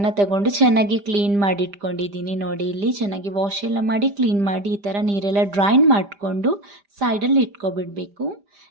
ತಗೊಂಡು ಚೆನ್ನಾಗಿ ಕ್ಲೀನ್ ಮಾಡಿ ಇಟ್ಕೊಂಡಿದ್ದೀನಿ. ನೋಡಿ, ಇಲ್ಲಿ ಚೆನ್ನಾಗಿ ವಾಶ್ ಎಲ್ಲ ಮಾಡಿ ಕ್ಲೀನ್ ಮಾಡಿ ಈ ಥರ ನೀರೆಲ್ಲ ಡ್ರೈನ್ ಮಾಡಿಕೊಂಡು ಸೈಡಲ್ಲಿ ಇಟ್ಕೊಬಿಡಬೇಕು.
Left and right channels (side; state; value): left; late; 5.0 ms